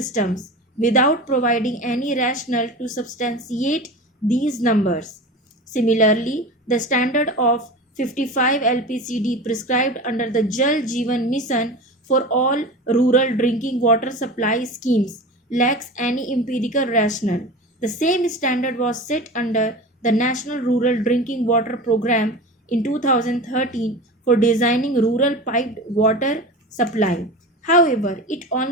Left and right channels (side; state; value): both; normal; correlation 0.30